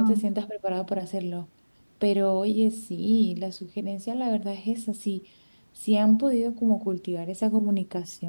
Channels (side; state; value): both; inverted; correlation -1.00